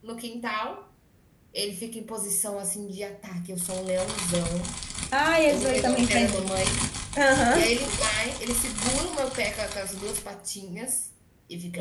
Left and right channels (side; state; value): both; identical; correlation 1.00